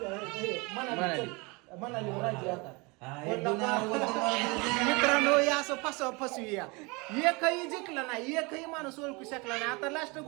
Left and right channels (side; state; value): left; quieter; 27.4 dB